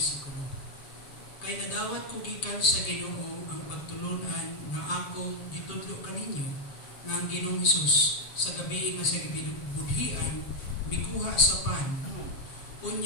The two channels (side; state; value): right; late; 7.6 ms